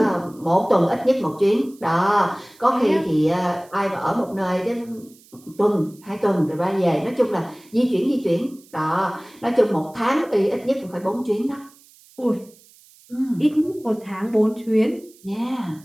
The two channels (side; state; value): right; noise; hiss, 27 dB below the sound